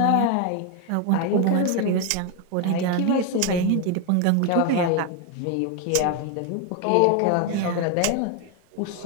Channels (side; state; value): both; different; correlation 0.01